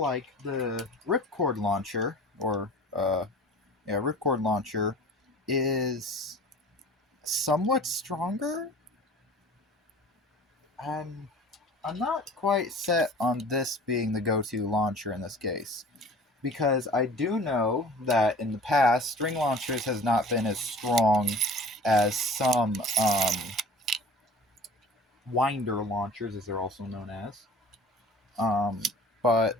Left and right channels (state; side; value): normal; both; correlation 0.44